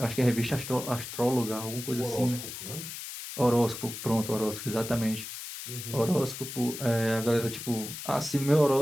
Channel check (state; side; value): noise; left; hiss, 9 dB below the sound